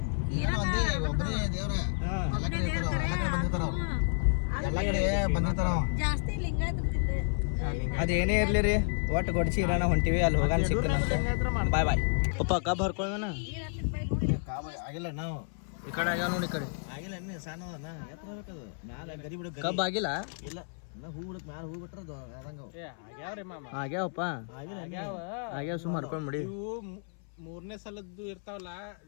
ಜಾಸ್ತಿ ಲಿಂಗಾಯತ ಅದೇನೇ ಇರ್ಲಿ ರೀ, ಒಟ್ಟು ಗೊಡ್ಚಿ ಇರಾನ ಹೊಂಟಿವಿ. ಅಲ್ಲಿ ಹೋಗಾನ ಸಿಗ್ತಾನ. ಬಾಯ್ ಬಾಯ್ ಪಪ್ಪ ಕಬ್ ಹರ್ಕೊಳ್ಳೋಣ. ಆಗಿಲ್ಲ ನಾವು ಈ ಕಡೆ ಆಗ್ಯಾವ ನೋಡಿ. ಈ ಕಡೆ ಆಗಿಲ್ಲ ಇನ್ನೇ ಸಣ್ಣ ಕಬ್ ಆಗಿಲ್ಲ. ಇಲ್ಲ ಹೂ ಬಿಡಕ್ ಮ್ಯಾಲ ಹೂ ಬಿಟ್ರ ಆಗ್ಯಾವಪ್ಪ. ಆಗ್ಯಾವ ಸುಮ್ಮ ಹರ್ಕೊಂಡ್ ಬಿಡಿ. ಮೂರನೇ ಸಲದ್ದು ಇರ್ತಾವಲ್ಲ,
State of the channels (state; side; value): silent; right; 57 dB below the other